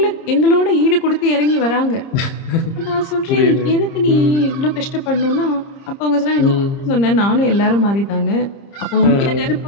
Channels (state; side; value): late; right; 30 ms